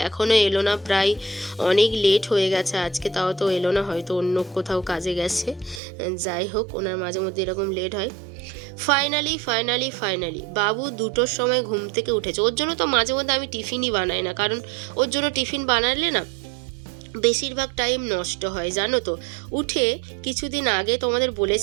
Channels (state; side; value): drops out; left; at 5.8 s